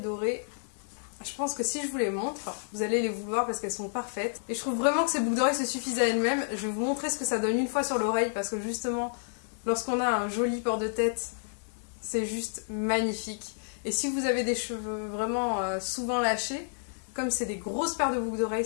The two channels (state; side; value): silent; right; digital silence